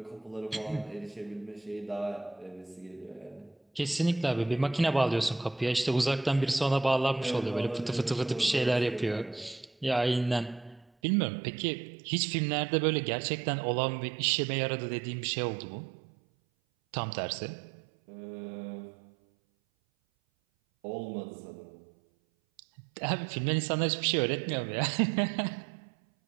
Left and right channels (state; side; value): drops out; left; at 10.9 s